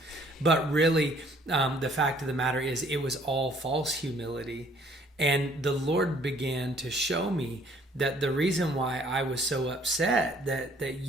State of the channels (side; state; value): both; normal; correlation 0.60